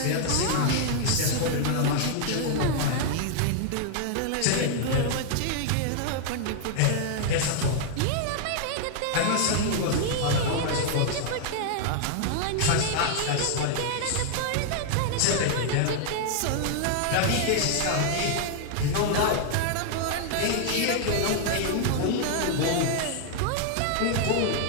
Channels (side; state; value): both; different; correlation -0.01